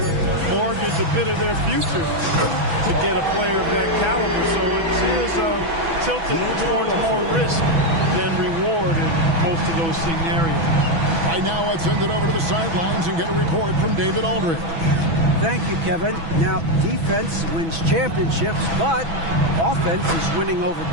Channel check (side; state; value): left; late; 6.1 ms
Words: mortgage a bit of their future to get a player of that caliber. So it is tilted towards more risk than reward in most of those scenarios. Right now, let's send it over to the sidelines and get a report from David Aldridge. Thank you, Kevin. Now, defense wins championships, but offense is winning over